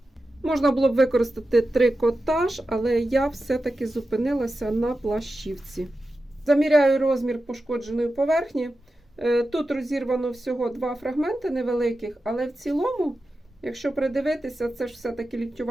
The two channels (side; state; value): both; normal; correlation 0.92